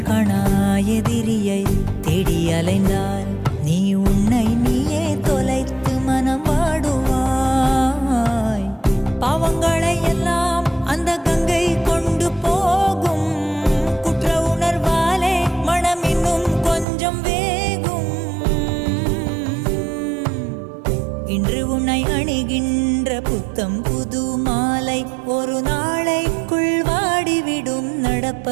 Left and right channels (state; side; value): drops out; left; at 16.9 s